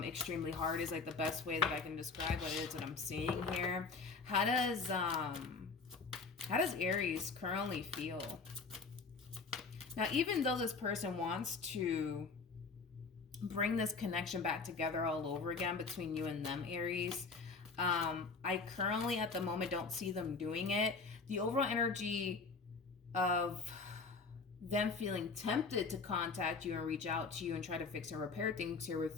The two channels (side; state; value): right; quieter; 4.5 dB